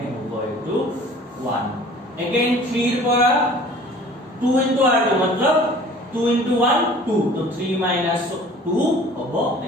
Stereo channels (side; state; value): both; normal; correlation 0.48